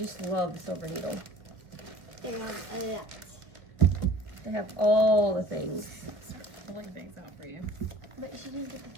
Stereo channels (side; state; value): left; late; 1.7 ms